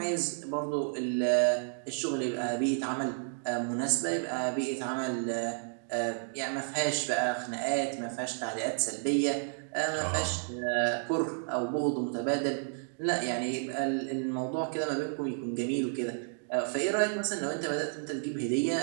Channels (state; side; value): silent; left; digital silence